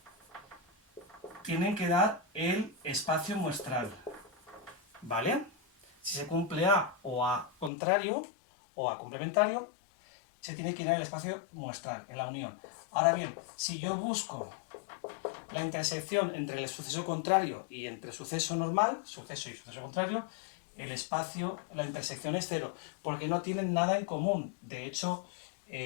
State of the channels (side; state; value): right; drops out; at 7.7 s